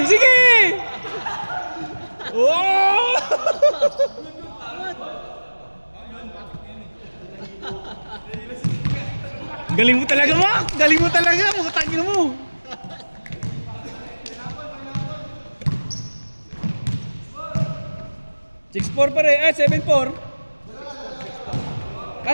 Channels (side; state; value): both; inverted; correlation -1.00